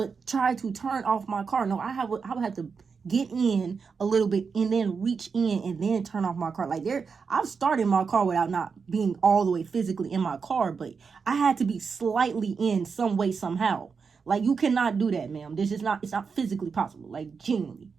try to turn off my car. No, I would have to get in a little bit and then reach in and then turn off my car. Like, I've started my car without not being all the way physically in my car, but I had to be slightly in some way, somehow. Like, you cannot do that, ma'am. It's not physically possible. Like, genuinely.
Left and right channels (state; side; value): quieter; left; 5.5 dB